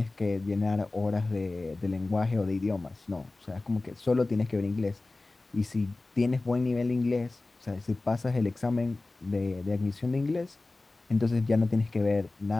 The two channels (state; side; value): quieter; right; 3.1 dB